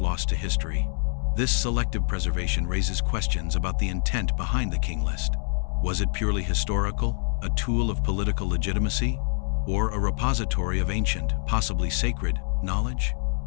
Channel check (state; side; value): silent; right; 57 dB below the other